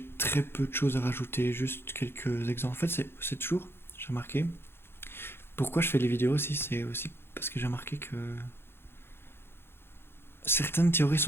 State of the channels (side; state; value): right; late; 0.11 ms